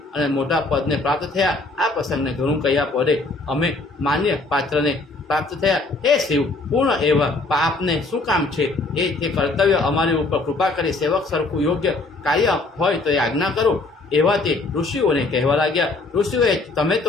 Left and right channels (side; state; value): right; quieter; 3.3 dB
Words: અને મોટા પદને પ્રાપ્ત થયા. આ પ્રસંગને ઘણું કહ્યા પડે અમે માન્ય પાત્રને પ્રાપ્ત થયા. હે શિવ, પૂર્ણ એવા પાપને શું કામ છે એ તે કર્તવ્ય અમારી ઉપર કૃપા કરી સેવક સરખું યોગ્ય કાર્ય હોય તો એ આજ્ઞા કરો. એવા તે ઋષિઓને કહેવા લાગ્યા. ઋષિઓએ તમે